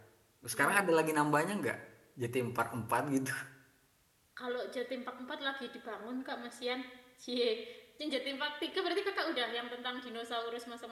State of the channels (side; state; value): both; identical; correlation 1.00